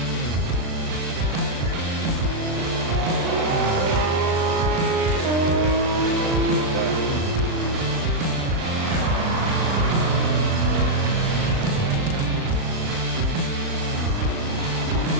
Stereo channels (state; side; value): late; left; 36 ms